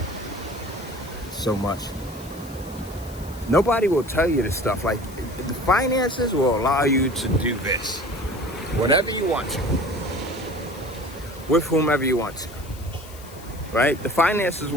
so much. Nobody will tell you this stuff. Like, the finances will allow you to do this, whatever you want to, with whomever you want to, right? The finances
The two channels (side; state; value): left; noise; hiss, 19 dB below the sound